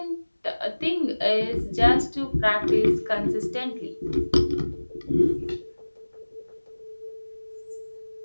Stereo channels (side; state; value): both; inverted; correlation -1.00